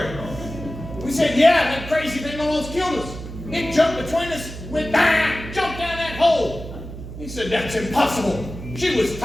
We said, yeah, that crazy thing almost killed us. It jumped between us, went bang, jumped down that hole. He said, that's impossible. She was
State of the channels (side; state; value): right; noise; hum, 11 dB below the sound